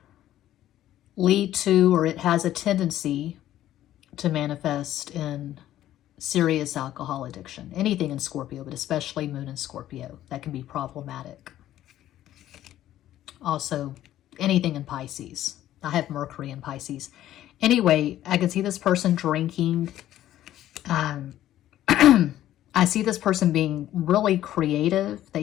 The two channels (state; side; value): quieter; right; 12.9 dB